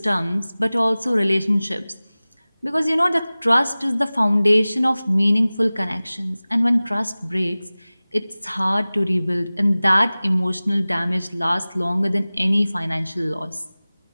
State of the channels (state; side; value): inverted; both; correlation -0.98